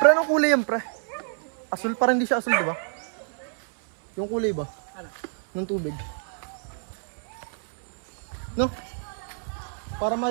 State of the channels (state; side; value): silent; left; 60 dB below the other